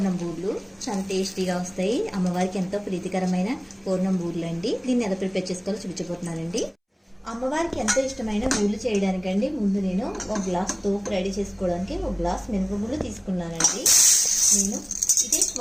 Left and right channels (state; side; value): identical; both; correlation 1.00